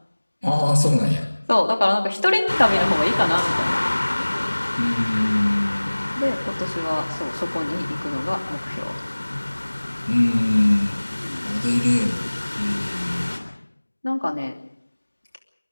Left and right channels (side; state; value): both; inverted; correlation -1.00